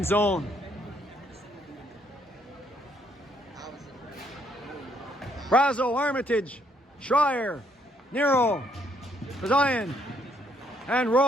zone. Brazo, Armitage, Schreier, Nero, Zion, and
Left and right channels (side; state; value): both; normal; correlation 0.70